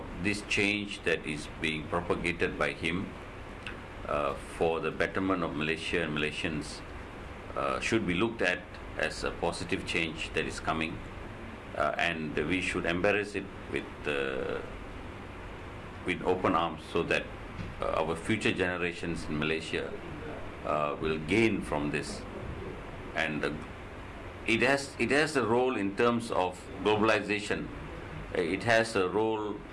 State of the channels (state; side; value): identical; both; correlation 1.00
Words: this change that is being propagated by him for the betterment of Malaysia and Malaysians should be looked at as a positive change that is coming, and we should embrace it with open arms, so that our future generations in Malaysia will gain from this. And it has a role in terms of globalization. It has a role